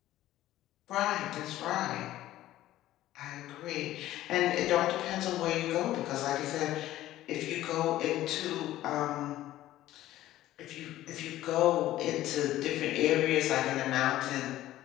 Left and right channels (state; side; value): quieter; right; 14.5 dB